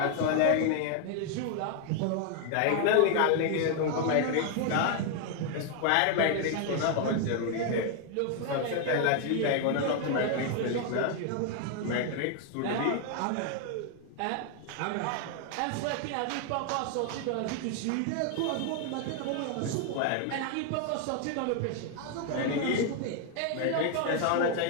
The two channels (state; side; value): different; both; correlation 0.00